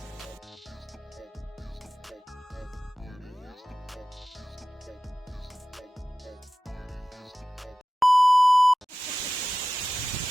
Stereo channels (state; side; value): normal; both; correlation 0.95